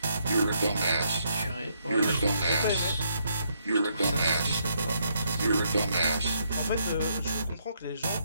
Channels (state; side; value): inverted; both; correlation -0.74